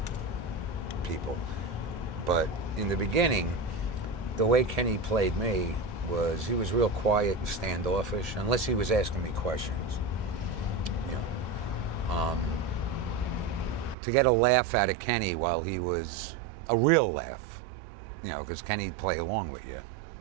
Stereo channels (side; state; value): left; drops out; at 14.0 s